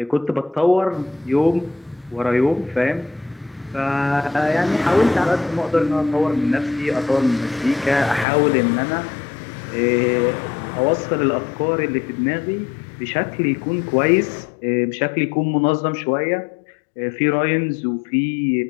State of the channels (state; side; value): drops out; right; at 8.2 s